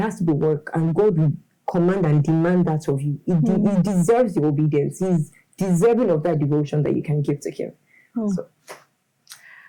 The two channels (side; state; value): both; identical; correlation 1.00